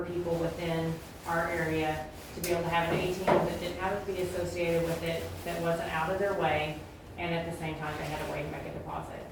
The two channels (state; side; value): identical; both; correlation 1.00